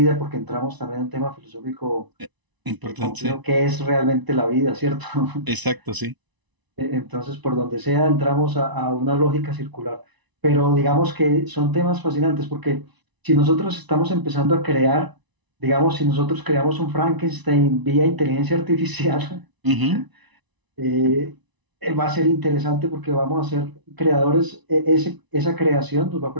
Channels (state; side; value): late; left; 1.0 ms